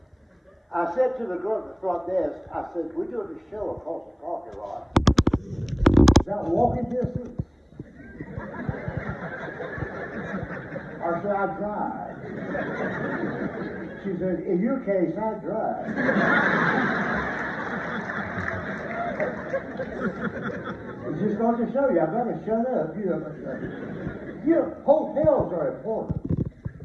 I said to the girl at the front desk, I said, we're doing a show across the parking lot. Is that walking distance? Or should I drive? She said, in your case, I drive. It's just going to show you. I've got to shut up. You know, hotels are important.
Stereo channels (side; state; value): both; identical; correlation 1.00